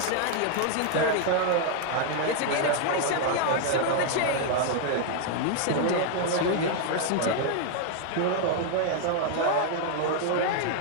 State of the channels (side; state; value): both; different; correlation 0.00